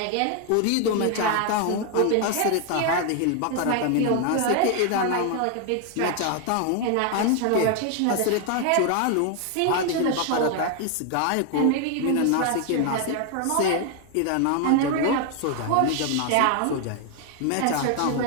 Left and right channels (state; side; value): different; both; correlation 0.00